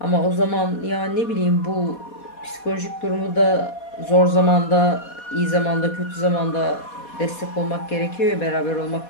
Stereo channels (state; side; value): late; right; 4.2 ms